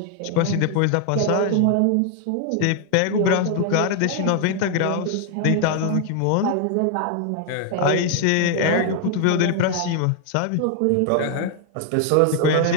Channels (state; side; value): different; both; correlation 0.00